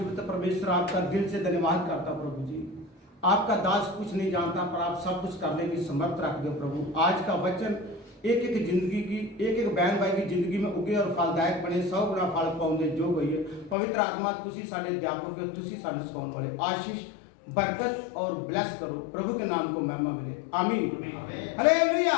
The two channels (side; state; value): right; drops out; at 13.8 s